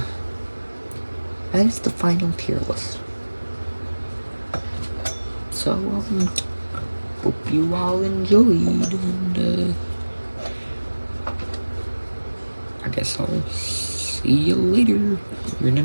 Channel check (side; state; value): both; inverted; correlation -1.00